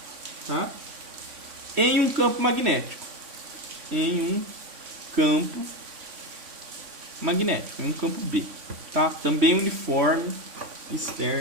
tá? Em um campo magnético. Em um campo magnético, em um campo B. Tá? Também uniforme,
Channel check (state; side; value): late; left; 3.5 ms